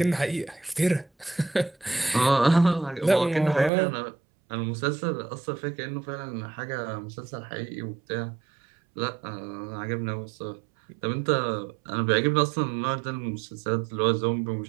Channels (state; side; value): drops out; left; at 3.7 s